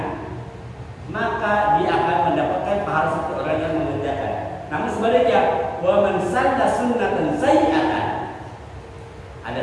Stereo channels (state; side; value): identical; both; correlation 1.00